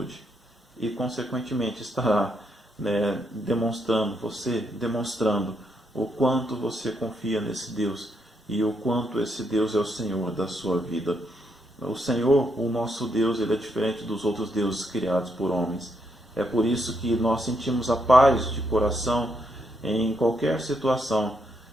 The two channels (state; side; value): normal; both; correlation 0.77